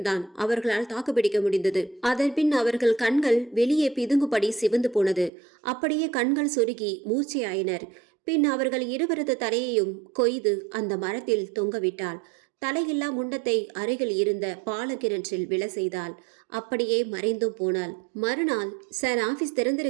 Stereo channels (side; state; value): left; drops out; at 5.3 s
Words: அவர்களால் தாக்குப்பிடிக்க முடிந்தது. அதன் பின் அவர்கள் கண்கள் வெளியே பிதுங்குபடி சிவந்து போனது. அப்படியே கண்கள் சொருகி மூச்சையாயினர். பின் அவர்கள் இருவரது தலையையும் கொய்து அந்த மரத்தில் தொங்கவிட்டாள். தலையில்லா முண்டத்தை அருகில் இருந்த பாலக்கிணற்றில் விழ செய்தாள். அப்படியே மறைந்தும் போனாள். மறுநாள், சார் ஆஃபீஸ்